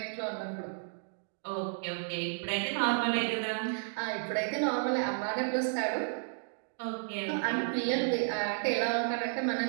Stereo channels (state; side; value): silent; left; digital silence